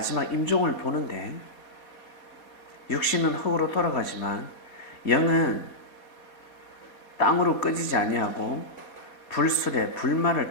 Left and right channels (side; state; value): right; late; 4.2 ms